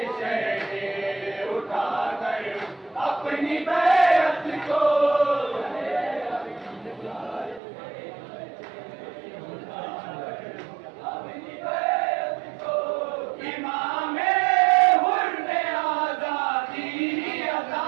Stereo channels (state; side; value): drops out; left; at 7.6 s